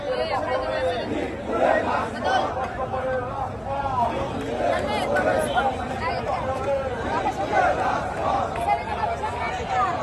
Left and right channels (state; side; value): identical; both; correlation 1.00